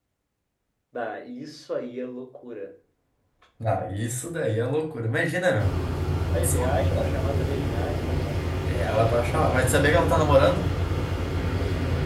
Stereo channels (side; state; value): both; identical; correlation 1.00